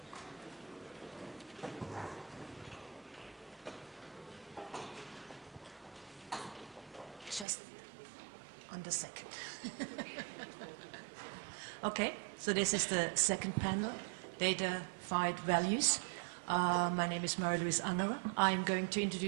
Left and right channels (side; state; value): left; drops out; at 7.5 s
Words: Just on the second. Okay, so this is the second panel, datafied values. My name is Marie-Luise. I'm going to